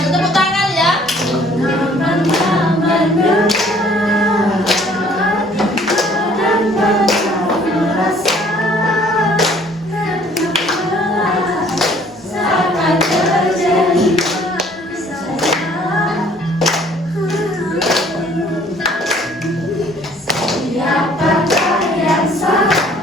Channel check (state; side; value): normal; both; correlation 0.57